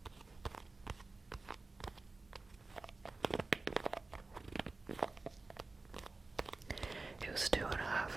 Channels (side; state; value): left; quieter; 3.5 dB